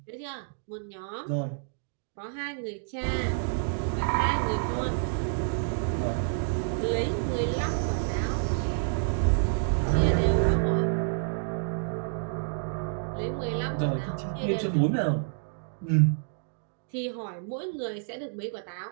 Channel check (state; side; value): silent; left; digital silence